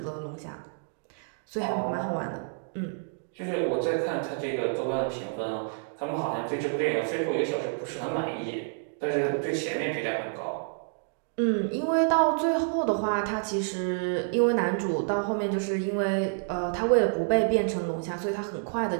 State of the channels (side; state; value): left; silent; digital silence